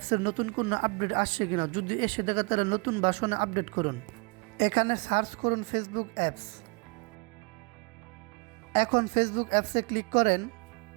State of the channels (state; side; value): quieter; left; 31.3 dB